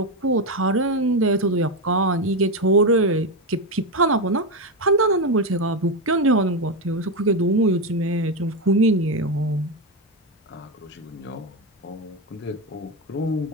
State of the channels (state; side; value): normal; both; correlation 0.10